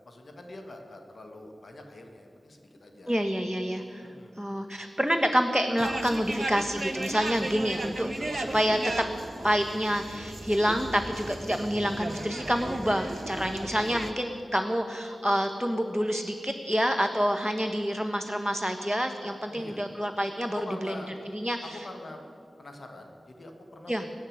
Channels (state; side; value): normal; both; correlation 0.96